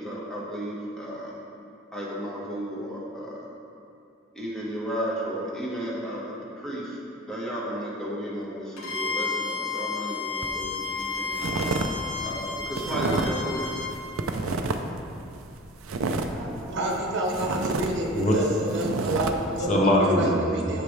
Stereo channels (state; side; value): normal; both; correlation 0.36